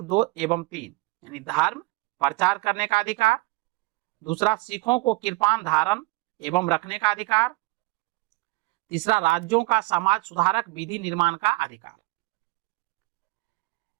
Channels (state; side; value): quieter; left; 24.1 dB